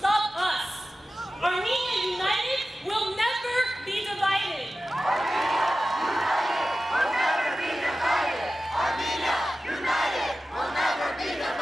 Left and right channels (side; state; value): both; normal; correlation 0.94